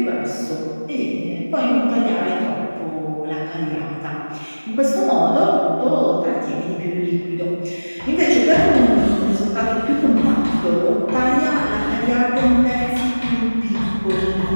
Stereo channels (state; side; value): inverted; both; correlation -1.00